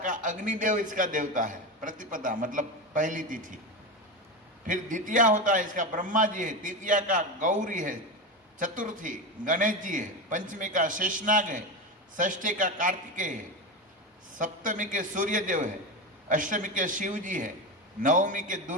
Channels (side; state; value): both; normal; correlation 0.19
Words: अग्निदेव इसका देवता है। प्रतिपदा मतलब पहली तिथि। फिर द्वितीया होता है इसका ब्रह्मा जी है। तृतीया का गौरी है। चतुर्थी गणेश जी है। पंचमी का शेषनाग है। षष्ठी का कार्तिकेय है। सप्तमी के सूर्यदेव है। अष्टमी के शिव जी है। नवमी के